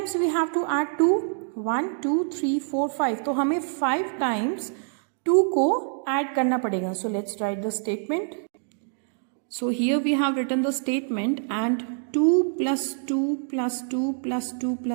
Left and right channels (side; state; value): left; silent; 61 dB below the other